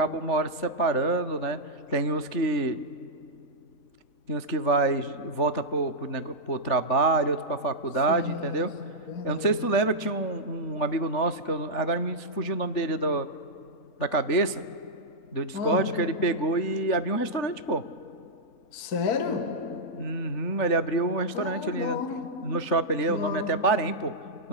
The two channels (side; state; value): right; late; 3.4 ms